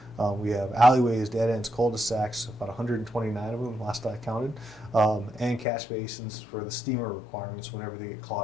We have alleyways, dead ends, cul-de-sacs, about 129 of them last I counted, and catch basins for the steamer requirements whenever they get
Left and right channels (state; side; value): drops out; right; at 5.7 s